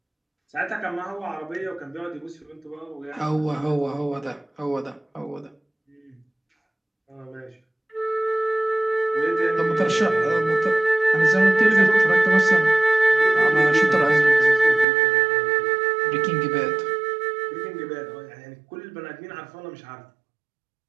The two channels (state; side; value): drops out; left; at 14.9 s